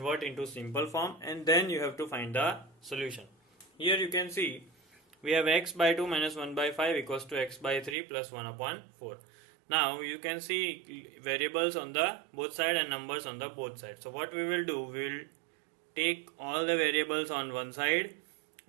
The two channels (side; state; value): left; drops out; at 8.0 s